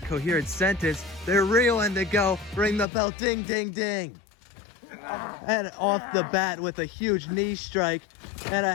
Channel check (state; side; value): drops out; right; at 2.9 s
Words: coherent sentence. They're reeling to go. Ring the bell, ding, ding, ding. And off the bat with a huge knee strike and a